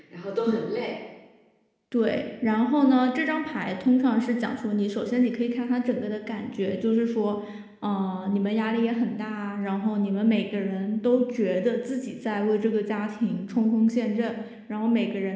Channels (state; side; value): identical; both; correlation 1.00